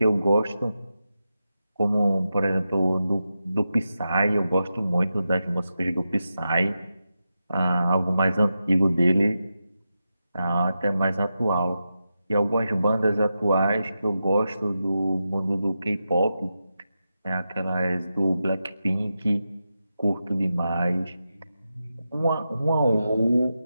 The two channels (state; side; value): inverted; both; correlation -0.89